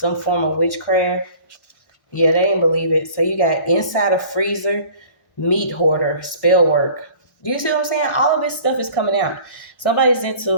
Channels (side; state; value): right; late; 1.1 ms